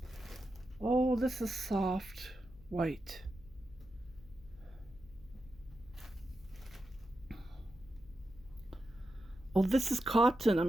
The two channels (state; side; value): noise; left; hum, 22 dB below the sound